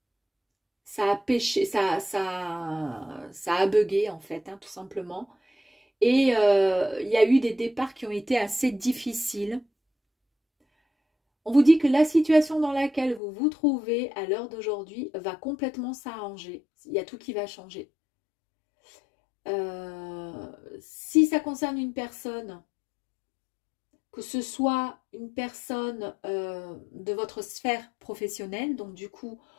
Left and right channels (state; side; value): drops out; right; at 13.2 s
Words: ça a péché, ça a bugué en fait, hein, tout simplement. Et il y a eu des départs qui ont été assez difficiles. On vous dit que la situation dans laquelle vous vous trouvez à l'heure d'aujourd'hui va complètement s'arranger. Il y a tout qui va changer. Si ça concerne une personne, que ce soit une personne de votre sphère professionnelle, donc du coup,